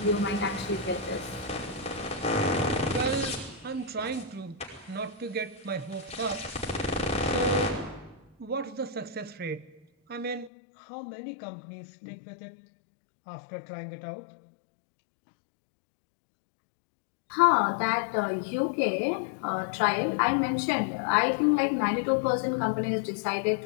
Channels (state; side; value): drops out; right; at 10.5 s